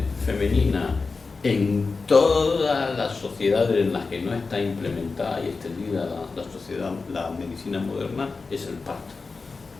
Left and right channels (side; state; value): right; quieter; 4.2 dB